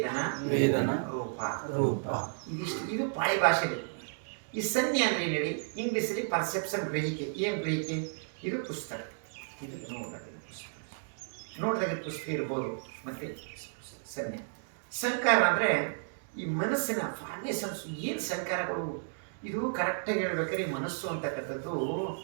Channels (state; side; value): silent; left; digital silence